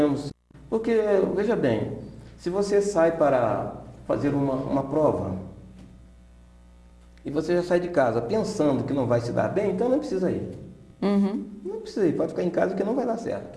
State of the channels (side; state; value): both; identical; correlation 1.00